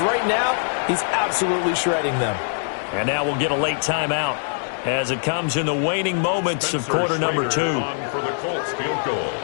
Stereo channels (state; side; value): silent; right; digital silence